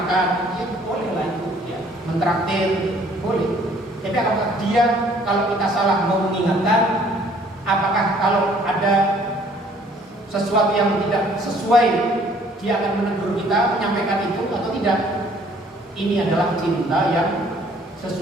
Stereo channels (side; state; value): both; normal; correlation 0.59